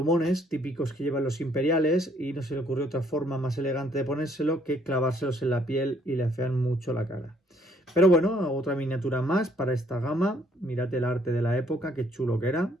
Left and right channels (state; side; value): normal; both; correlation 0.66